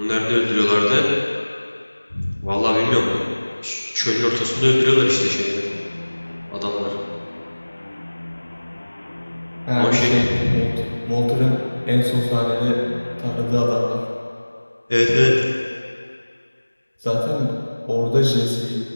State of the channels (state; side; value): inverted; both; correlation -1.00